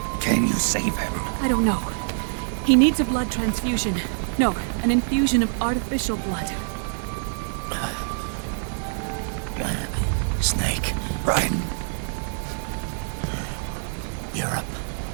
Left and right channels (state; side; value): silent; left; 62 dB below the other